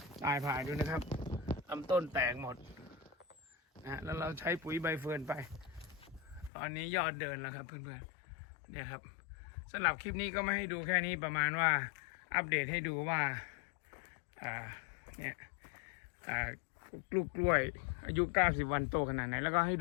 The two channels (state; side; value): drops out; right; at 6.5 s